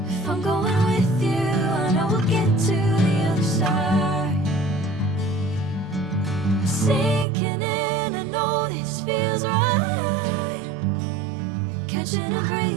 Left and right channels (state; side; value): drops out; left; at 7.2 s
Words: If I'm going with you, I know we'll get to the other side. Sinking in, I know this feels right. Catching a